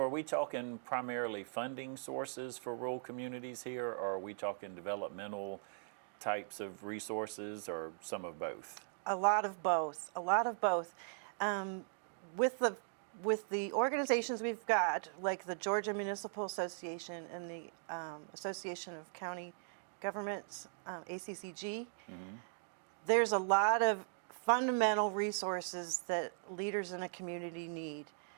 are we talking primarily funding sources for rural communities here, or are we talking developmental types of resources, or some of both? A lot of both. With the with the organizations we've got, like the Georgia Municipal Association and the Association of County Governments, ACCG, there's a lot of fundamental resources that leaders in a community need.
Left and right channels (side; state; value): left; silent; digital silence